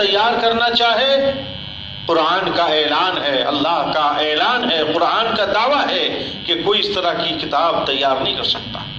کرنا چاہے، قرآن کا اعلان ہے، اللہ کا اعلان ہے، قرآن کا دعویٰ ہے کہ کوئی اس طرح کی کتاب تیار نہیں کر سکتا۔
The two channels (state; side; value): identical; both; correlation 1.00